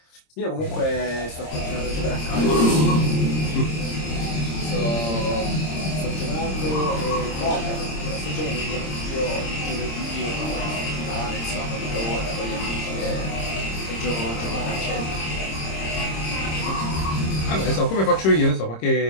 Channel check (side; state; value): right; late; 26 ms